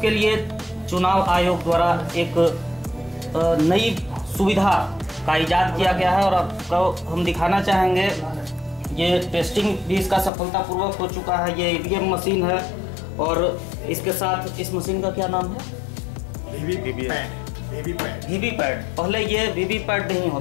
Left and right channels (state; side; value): drops out; right; at 10.3 s